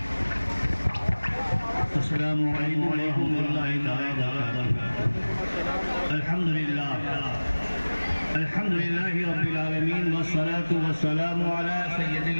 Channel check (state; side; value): inverted; both; correlation -1.00